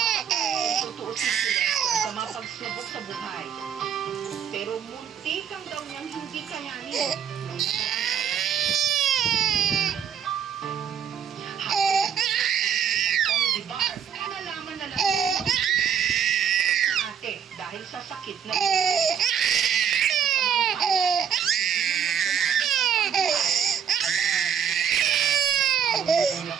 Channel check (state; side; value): quieter; left; 8.0 dB